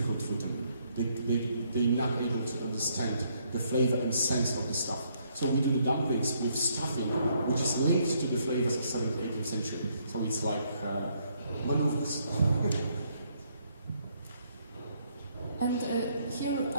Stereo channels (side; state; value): both; inverted; correlation -0.71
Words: for them. They're not able to understand the flavor and sense of the stuff. So we do the dumplings with stuffing, which is linked to the flavors of 7th, 18th century. So it's like maneuvers. And here